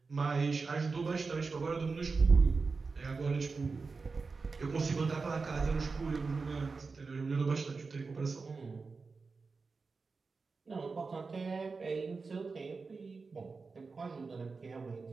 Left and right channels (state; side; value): quieter; left; 4.4 dB